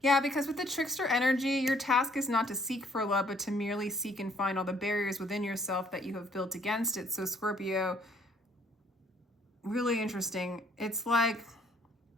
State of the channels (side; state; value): both; normal; correlation 0.63